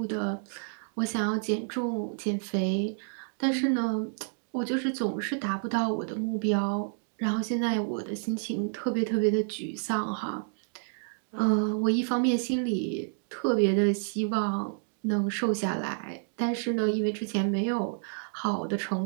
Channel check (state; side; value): silent; left; 58 dB below the other